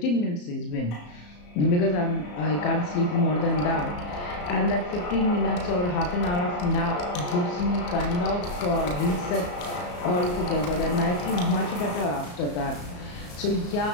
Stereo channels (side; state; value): right; late; 34 ms